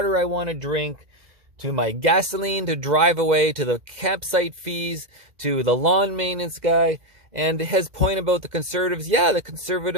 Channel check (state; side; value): late; left; 2.0 ms